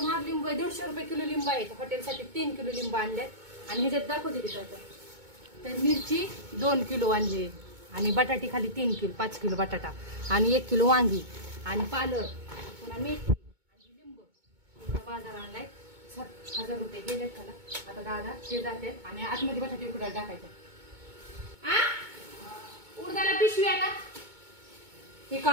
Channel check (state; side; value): late; left; 2.2 ms